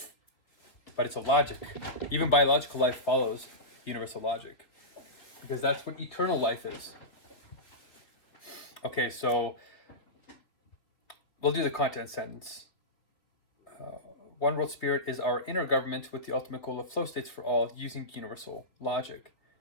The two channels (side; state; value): right; late; 3.3 ms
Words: But it's a logic. Even biological life follows universal logic. Because that's what eternal life is. Okay, so we'll do the content sentence. One World Spirit is our inner government with the ultimate goal of flow states for all using universal logic.